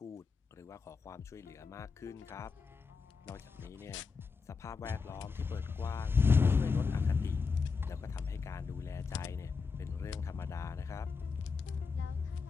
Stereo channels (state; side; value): quieter; right; 5.0 dB